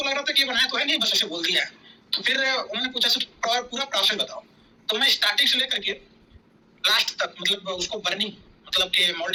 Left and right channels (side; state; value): both; identical; correlation 1.00